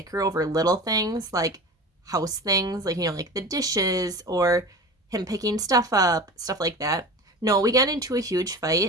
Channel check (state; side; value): normal; both; correlation 0.34